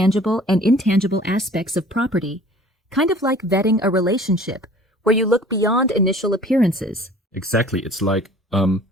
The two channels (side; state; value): both; normal; correlation 0.49